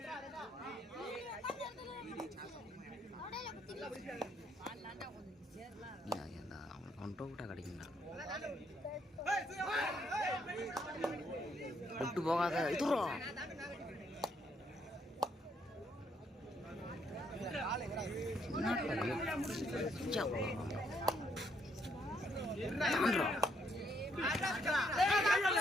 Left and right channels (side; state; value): both; normal; correlation 0.72